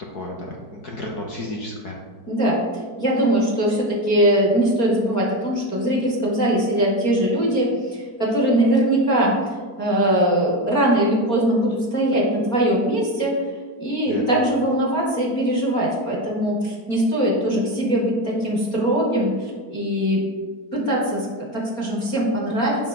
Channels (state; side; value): late; right; 4.3 ms